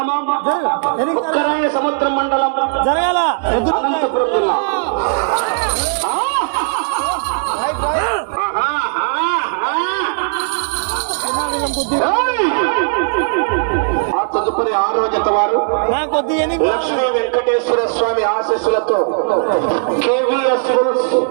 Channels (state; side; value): silent; left; digital silence